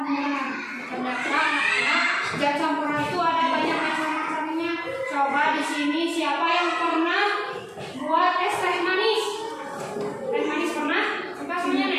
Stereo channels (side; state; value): both; identical; correlation 1.00